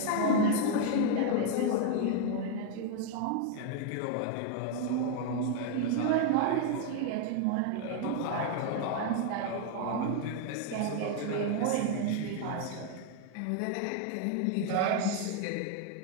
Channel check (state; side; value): different; both; correlation 0.00